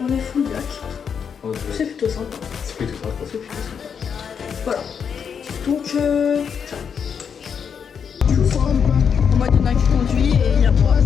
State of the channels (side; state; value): right; quieter; 7.0 dB